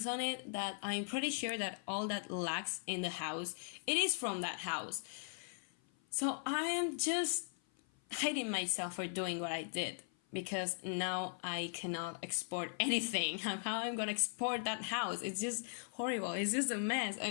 on it that I'm pretty sure that all that lacks in the house, it is from that house. So I am just hating myself for doing what I did, because now I cannot export anything. How I'm gonna export that house? It's just horrible. It's just a mess.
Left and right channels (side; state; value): right; silent; 52 dB below the other